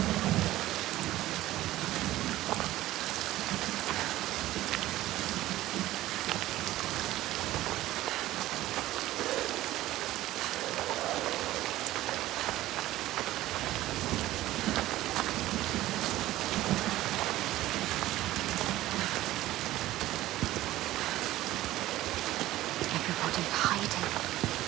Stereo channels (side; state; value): left; quieter; 15.6 dB